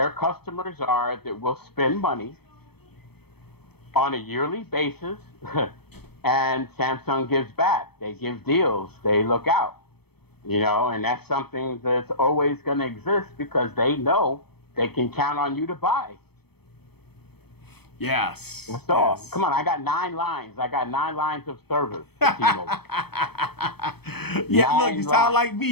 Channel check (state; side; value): late; right; 0.97 ms